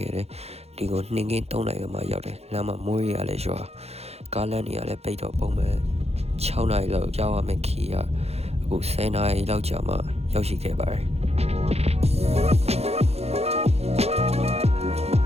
ခဲ့တယ်ဒီကိုနှင်းကင်း3နာရီမှရောက်တယ်လမ်းမှာမိုးရလည်းရွာကားလမ်းတွေကလည်းပိတ်တော့ပုံမှန်6နာရီလောက်ရောက်ရမယ်ခီးရအခု10နာရီလောက်ကြာမှရောက်ရှိခဲ့ပါတယ်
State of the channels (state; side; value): late; left; 0.30 ms